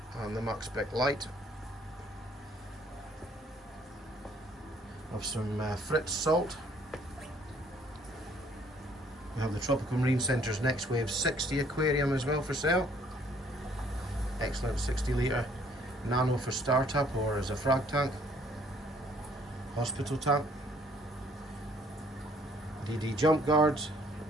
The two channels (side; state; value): both; normal; correlation 0.62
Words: and the Max Spec light. Of some Fritz salt. We have the Tropical Marine Centre's Next Wave 60 aquarium as well for sale. Excellent 60 litre nano for startup or as a frag tank, hospital tank, DD jump guards,